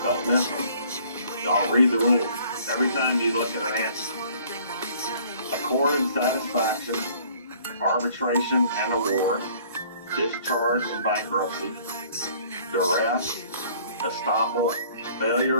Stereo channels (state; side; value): inverted; both; correlation -0.56